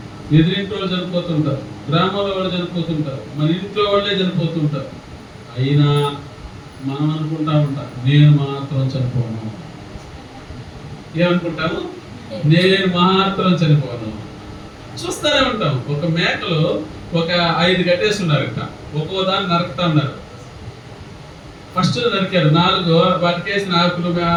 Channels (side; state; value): both; identical; correlation 1.00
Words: ఎదురింటి వాళ్ళు చనిపోతుంటారు, గ్రామంలో వాళ్ళు చనిపోతుంటారు, మన ఇంట్లో వాళ్ళే చనిపోతుంటారు. అయినా మనం అనుకుంటా ఉంటాం, నేను మాత్రం చనిపోను. ఏమనుకుంటాము? నేను మాత్రం చనిపోను. చూస్తూనే ఉంటాం. ఒక మేకలు ఒక 5 కట్టేసి ఉన్నారట, ఒక్కో దాన్ని నరుకుతా ఉన్నారు. ఫస్ట్ నరికారు 4, వాటికేసిన ఆకులు